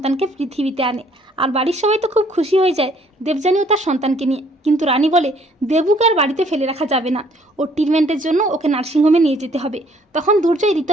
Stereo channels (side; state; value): both; normal; correlation 0.62